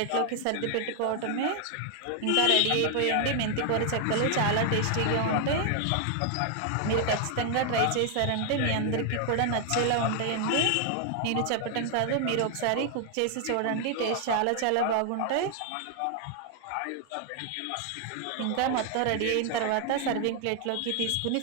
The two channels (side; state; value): both; different; correlation 0.00